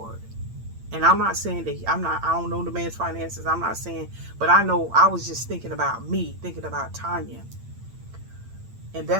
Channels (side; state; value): left; late; 8.8 ms